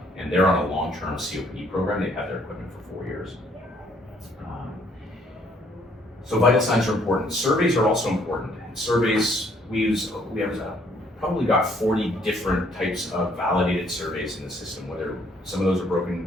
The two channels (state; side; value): normal; both; correlation 0.65